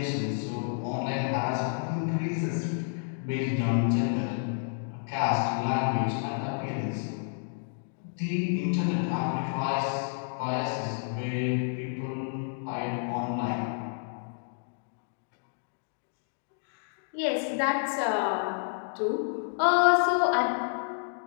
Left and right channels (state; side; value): silent; right; digital silence